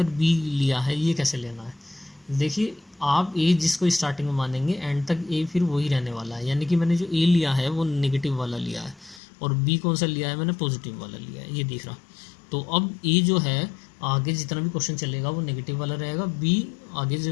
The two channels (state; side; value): drops out; right; at 9.2 s